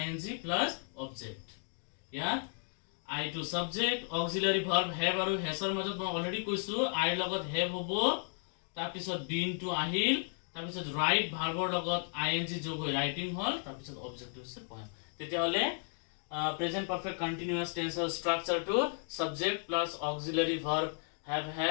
plus object. ইয়াত আই টু সাবজেক্ট, অক্সিলারি ভার্ব হ্যাভ আৰু হ্যাজৰ মাজত মই অলৰেডি কৈছো আইৰ লগত হ্যাভ হ'ব, তাৰপিছত বিন টু আহিল, তাৰপিছত ৰাইট ভাৰ্বৰ লগত আইএনজি যোগ হৈ ৰাইটিং হ'ল, তাৰপিছত অবজেক্ট হৈছে পয়েম। তেতিয়াহ'লে প্ৰেজেন্ট পাৰফেক্ট কন্টিনিউয়াস টেন্সৰ ষ্ট্ৰাকচাৰটো subject plus auxiliary verb have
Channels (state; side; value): silent; right; 55 dB below the other